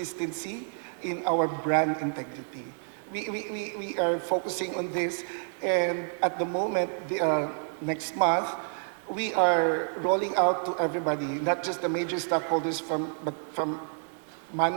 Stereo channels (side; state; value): left; silent; 58 dB below the other